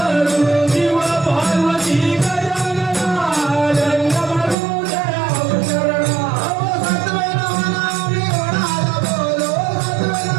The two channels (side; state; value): left; drops out; at 4.5 s